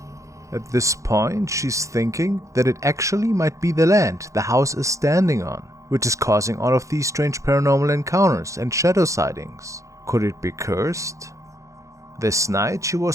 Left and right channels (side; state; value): left; late; 0.15 ms